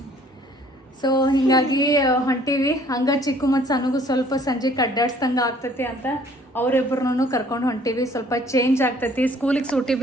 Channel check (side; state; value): both; normal; correlation 0.57